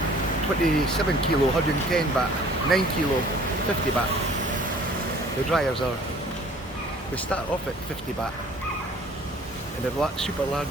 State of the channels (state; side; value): normal; both; correlation 0.52